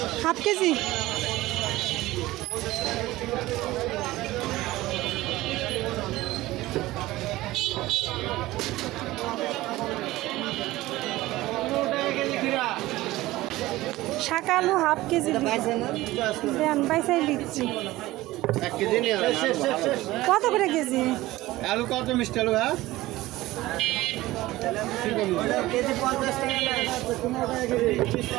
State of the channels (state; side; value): quieter; left; 17.6 dB